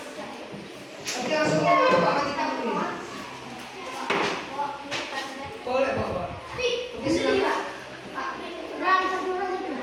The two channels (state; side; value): identical; both; correlation 1.00